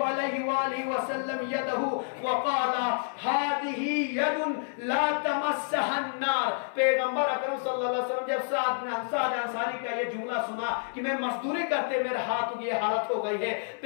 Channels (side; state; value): right; silent; 59 dB below the other